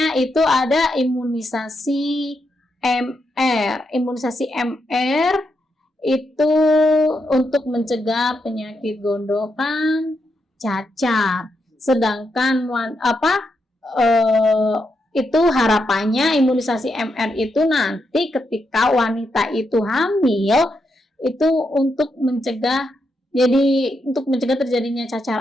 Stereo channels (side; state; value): both; normal; correlation 0.83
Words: itu ada imunisasi MR. Imunisasi MR itu untuk mencegah penyakit gondokan, cacar. Sedangkan itu harapannya imunisasi MR itu nanti ketika wanita itu hamil itu untuk mencegah terjadinya cacar